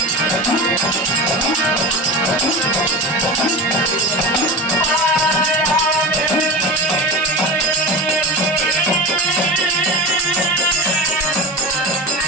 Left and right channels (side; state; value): both; normal; correlation 0.27